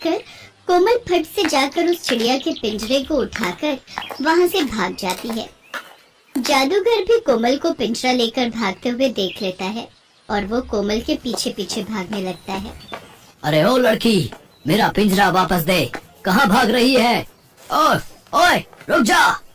कोमल फट से जाकर उस चिड़िया के पिंजरे को उठाकर वहाँ से भाग जाती है। जादूगर भी कोमल को पिंजरा लेकर भागते हुए देख लेता है और वो कोमल के पीछे पीछे भागने लगता है। अरे ओ लड़की, मेरा पिंजरा वापस दे, कहाँ भाग रही है? ओए ओए, रुक जा।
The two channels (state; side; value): identical; both; correlation 1.00